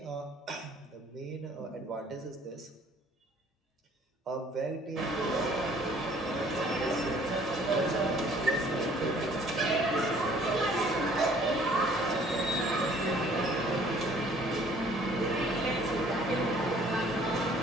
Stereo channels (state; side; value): normal; both; correlation 0.57